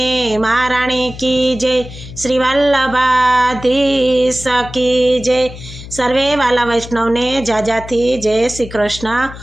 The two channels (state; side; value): noise; left; hum, 14 dB below the sound